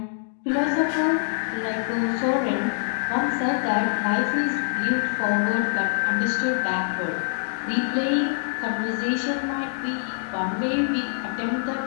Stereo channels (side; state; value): right; silent; digital silence